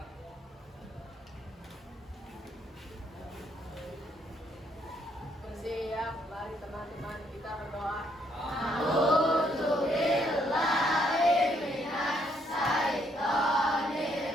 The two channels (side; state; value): both; normal; correlation 0.71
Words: Bersiap, mari teman-teman kita berdoa.